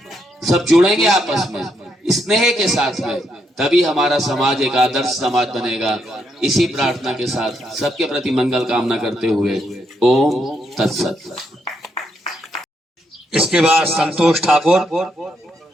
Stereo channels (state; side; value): normal; both; correlation 0.77